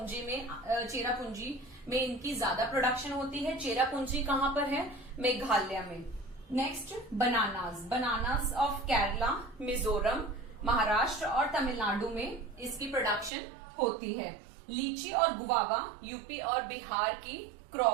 में इनकी ज्यादा प्रोडक्शन होती है। चेरापूंजी कहाँ पर है? मेघालय में। Next, bananas of Kerala, Mizoram, Maharashtra और तमिलनाडु में इसकी प्रोडक्शन होती है। लीची और गुवावा यूपी और बिहार की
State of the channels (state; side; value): drops out; left; at 13.3 s